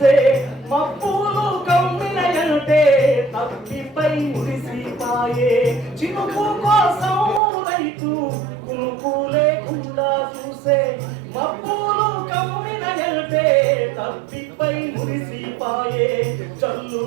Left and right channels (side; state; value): left; drops out; at 7.4 s